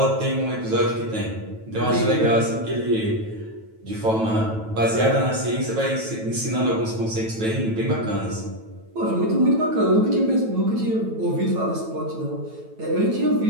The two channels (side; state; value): left; late; 9.1 ms